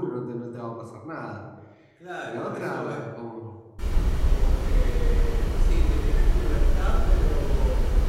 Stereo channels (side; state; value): both; identical; correlation 1.00